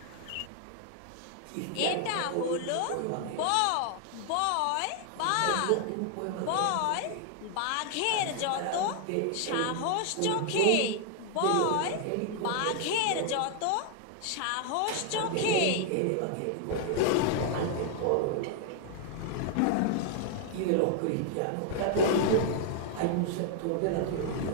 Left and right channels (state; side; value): different; both; correlation 0.00